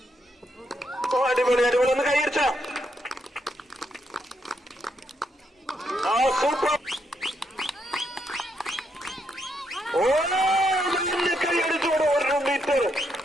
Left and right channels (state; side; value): normal; both; correlation 0.78